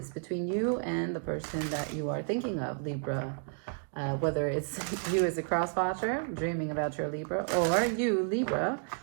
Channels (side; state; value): left; silent; 57 dB below the other